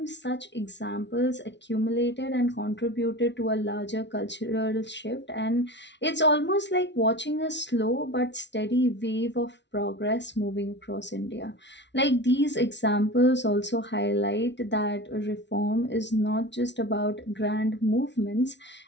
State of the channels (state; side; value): late; right; 0.51 ms